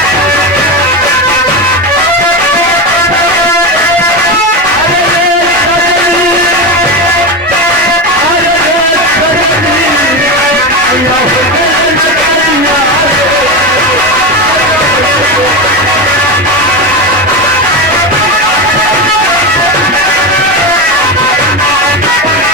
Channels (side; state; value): both; normal; correlation 0.18